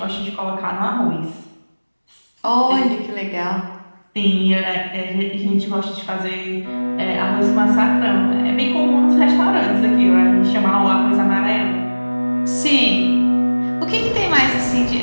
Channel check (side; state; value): both; inverted; correlation -1.00